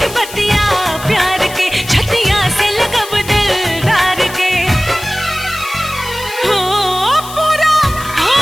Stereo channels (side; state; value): left; noise; hiss, 14 dB below the sound